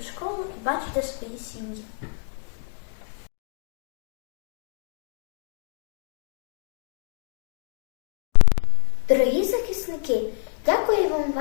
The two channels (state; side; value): silent; right; 57 dB below the other